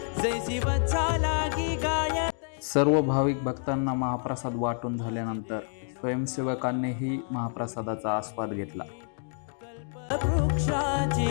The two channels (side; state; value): right; silent; 59 dB below the other